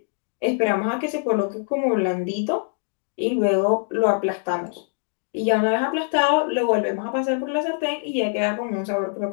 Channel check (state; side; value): silent; right; digital silence